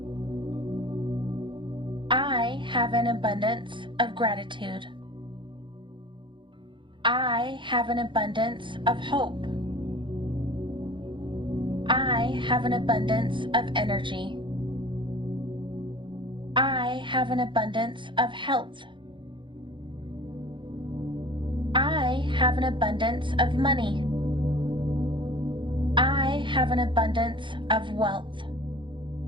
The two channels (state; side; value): late; left; 0.23 ms